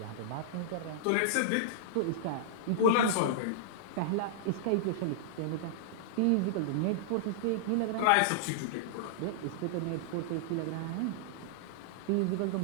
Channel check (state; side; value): different; both; correlation -0.02